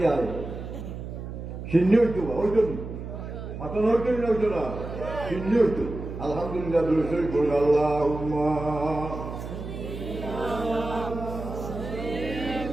আয় সিন্নি হইতো হইতো নি মাথা হইতো না হইতো না সিন্নি হইতো আলহামদুলিল্লাহ দুরূদ পড়ি আল্লাহুম্মা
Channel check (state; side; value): noise; right; hum, 8 dB below the sound